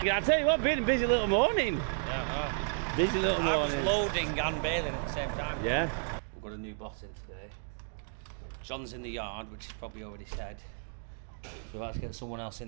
Yeah, I tell you what, been a busy little morning. Yeah, Busy little I was morning. loading and baling at the same time. Yeah. We've got a new boss in today. John's in the yard, which is probably already said. So we've had to get someone else in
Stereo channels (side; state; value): left; silent; digital silence